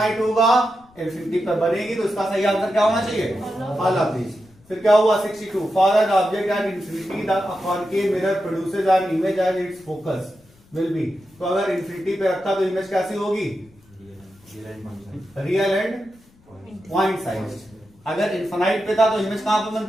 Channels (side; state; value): left; noise; rumble, 30 dB below the sound